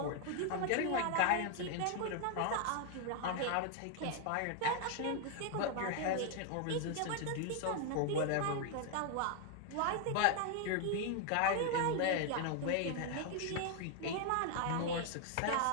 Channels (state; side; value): different; both; correlation 0.00